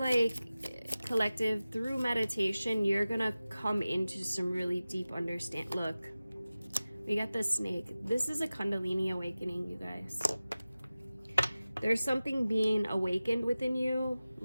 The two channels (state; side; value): inverted; both; correlation -0.96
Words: collective, through meditation, you're gonna come into some really deep understanding. Look, we got the snake. This is a Kundalini awakening, you guys. There's something being awakened within you.